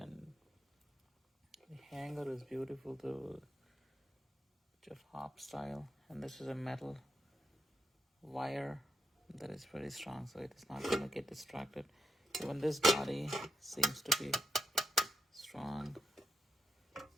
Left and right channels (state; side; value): normal; both; correlation 0.82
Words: the hanger is beautiful too, just hop style, and this is a metal wire that is very strong, so it is not going to get distracted. Even this body seems to be strong,